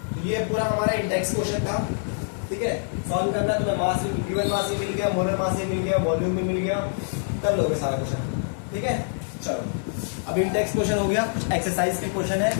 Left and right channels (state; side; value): silent; right; 56 dB below the other